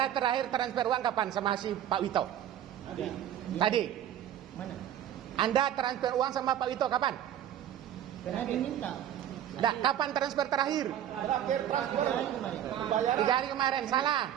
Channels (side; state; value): left; quieter; 10.8 dB